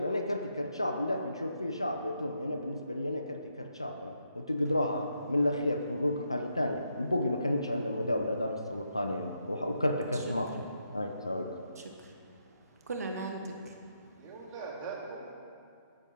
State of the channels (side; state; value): both; inverted; correlation -0.79